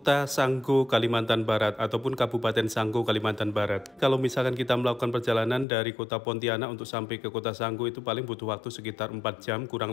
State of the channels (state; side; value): drops out; right; at 5.7 s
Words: Sanggo, Kalimantan Barat, ataupun Kabupaten Sanggo, Kalimantan Barat. Kalau misalkan kita melakukan perjalanan dari kota Pontianak untuk sampai ke Kota Sanggo itu paling butuh waktu sekitar 4 jam